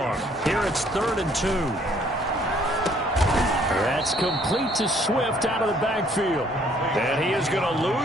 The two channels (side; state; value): both; normal; correlation 0.62